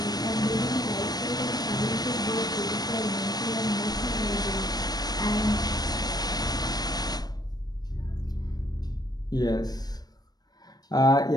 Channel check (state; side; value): late; right; 0.19 ms